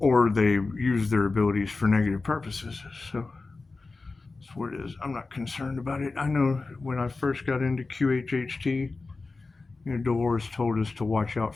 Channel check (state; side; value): quieter; right; 3.7 dB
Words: they use their abilities for negative purposes. So that's what it is. I'm not concerned about it. I know when I first got into QHHT, Dolores told us to watch out